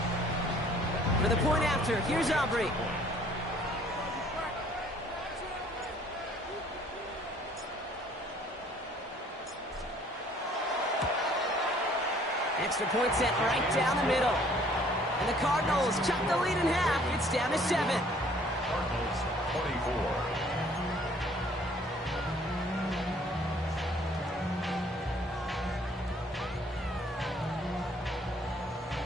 For the point after, here's Aubrey. Extra point set right down the middle. And the Cardinals chop the lead in half. It's down to 7. Cardinals 24.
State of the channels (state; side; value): normal; both; correlation 0.58